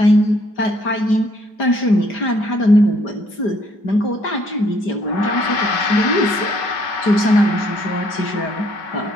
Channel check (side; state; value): right; late; 5.0 ms